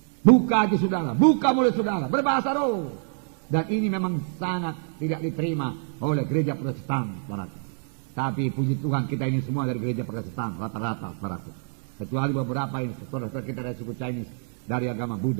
Buka hati saudara, buka mulut saudara, berbahasa roh. Dan ini memang sangat tidak diterima oleh gereja Protestan, saudara. Tapi puji Tuhan kita ini semua dari gereja Protestan, rata-rata, saudaraku. Kecuali beberapa ini, saudara-saudara kita dari suku Chinese, dari agama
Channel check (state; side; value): silent; left; 60 dB below the other